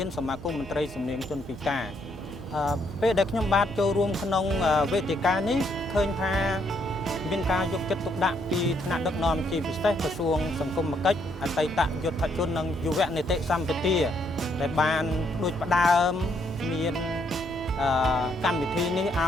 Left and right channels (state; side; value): normal; both; correlation 0.72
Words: នសមាគមមន្ត្រីសំនៀងជនពិការពេលដែលខ្ញុំបាទចូលរួមក្នុងវេទិកានេះឃើញថាមានការយកចិត្តទុកដាក់ពីថ្នាក់ដឹកនាំជាពិសេសក្រសួងសង្គមគិច្ចអតីតយុទ្ធជននិងយុវនីតិសម្បទាដែលបានដូចផ្ដើមមានកម្មវិធីនេះឲ